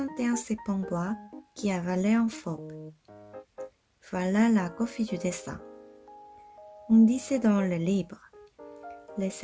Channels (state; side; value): identical; both; correlation 1.00